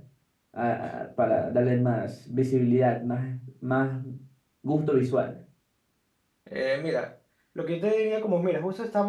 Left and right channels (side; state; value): both; identical; correlation 1.00